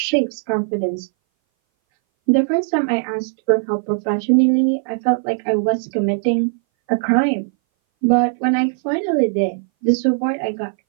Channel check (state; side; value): silent; left; 60 dB below the other